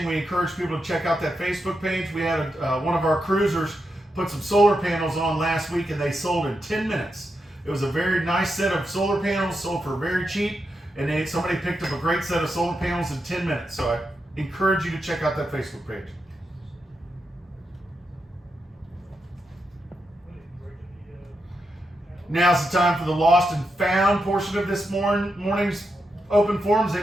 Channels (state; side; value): normal; both; correlation 0.85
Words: We encourage people to check out that Facebook page. We had one of our cruisers put some solar panels on last week and they sold in 10 minutes. It was a very nice set of solar panels, sold for very cheap, and somebody picked up a great set of solar panels in 10 minutes. So I encourage you to check out that Facebook page. Now's the time for the lost and found portion of this morning's open forums.